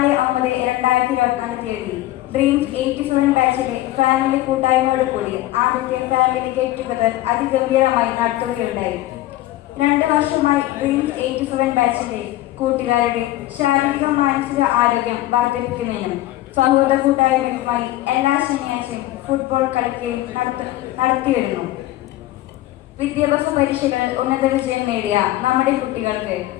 തീയതി ഡ്രീംസ് 87 ബാച്ചിലെ ഫാമിലി കൂട്ടായ്മയോട് കൂടി ആദ്യത്തെ ഫാമിലി ഗെറ്റ് ടുഗദർ അതിഗംഭീരമായി നടത്തുകയുണ്ടായി. 2 വർഷമായി ഡ്രീംസ് 87 ബാച്ചിലെ കൂട്ടുകാരുടെ ശാരീരിക മാനസിക ആരോഗ്യം വർദ്ധിപ്പിക്കുന്നതിനും സൗഹൃദ കൂട്ടായ്മയുമായി എല്ലാ ശനിയാഴ്ചയും ഫുട്ബോൾ കളിക്കുകയും നടത്തിവരുന്നു. വിദ്യാഭ്യാസ പരീക്ഷകളിൽ ഉന്നത വിജയം നേടിയ നമ്മുടെ കുട്ടികൾക്ക്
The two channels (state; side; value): quieter; right; 15.9 dB